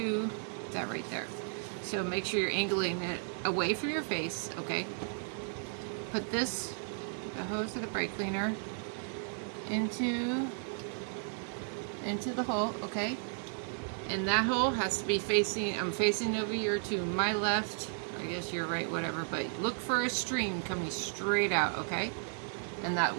that right there. So make sure you're angling it away from your face, okay? Put the hose of the brake cleaner into the hole, okay? And that hole has to be facing, I'm facing over here to my left, I guess you're right, whatever, but look for a stream coming straight out, okay? And that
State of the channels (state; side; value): silent; left; 55 dB below the other